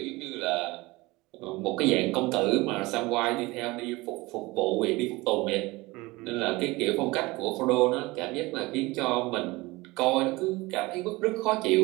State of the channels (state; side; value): quieter; left; 21.8 dB